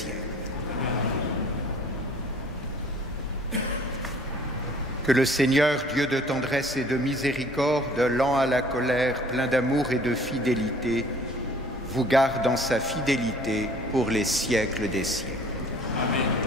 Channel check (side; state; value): both; normal; correlation 0.52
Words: Que le Seigneur, Dieu de tendresse et de miséricorde, lent à la colère, plein d'amour et de fidélité, vous garde dans sa fidélité pour les siècles des siècles. Amen.